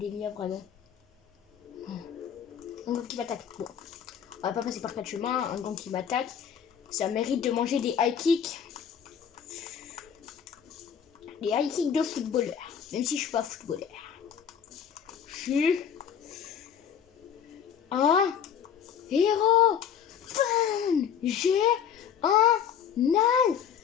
vraiment. Un gang qui m'attaque. Bon, on va pas passer par 4 chemins. Un gang qui m'attaque. Ça mérite de manger des high kicks. Des high kicks de footballeur. Même si je suis pas footballeur. Je suis un héros. Fun. J'ai un alter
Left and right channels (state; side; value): quieter; right; 8.2 dB